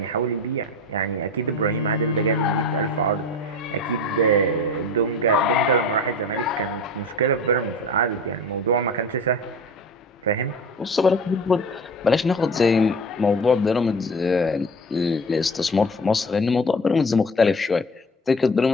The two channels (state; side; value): normal; both; correlation 0.35